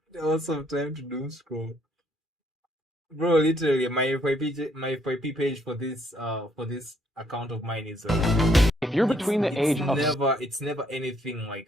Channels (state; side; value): normal; both; correlation 0.68